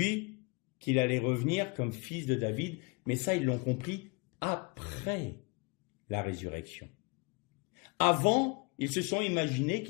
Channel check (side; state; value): right; quieter; 29.1 dB